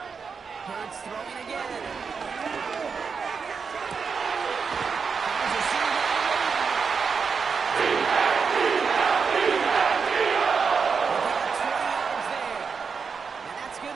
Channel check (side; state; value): left; quieter; 5.6 dB